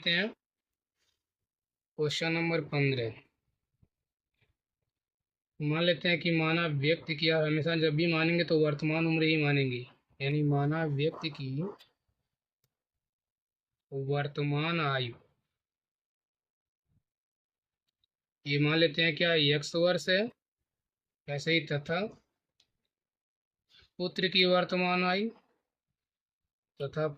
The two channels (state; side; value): identical; both; correlation 1.00